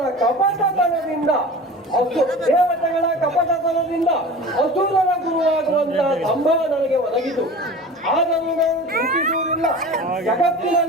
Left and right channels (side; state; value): both; normal; correlation 0.36